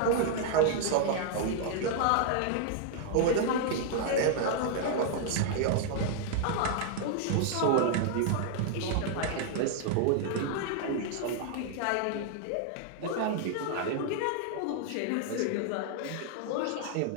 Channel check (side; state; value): both; different; correlation 0.00